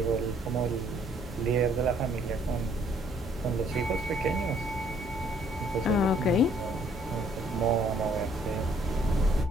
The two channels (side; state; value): both; normal; correlation 0.63